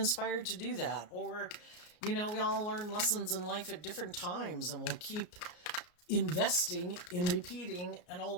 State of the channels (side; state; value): right; late; 34 ms